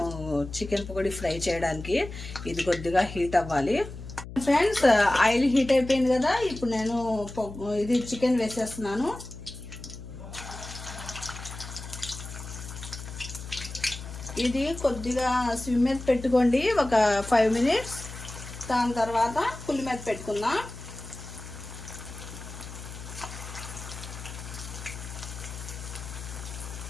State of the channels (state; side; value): noise; left; hum, 12 dB below the sound